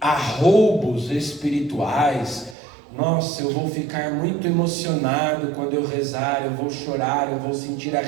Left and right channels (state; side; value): drops out; left; at 2.6 s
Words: espirituais. Nossa, eu vou ficar muito emocionado quando eu rezar, eu vou chorar, eu vou sentir